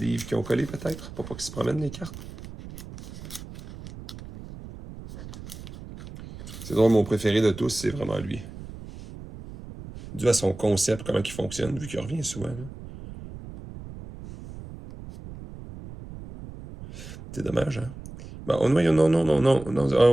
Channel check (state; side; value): noise; right; rumble, 13 dB below the sound